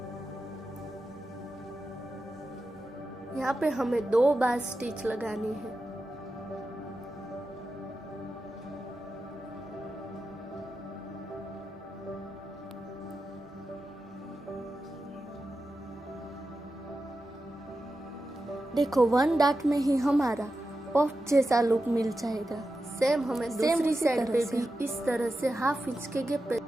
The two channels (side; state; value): both; normal; correlation 0.91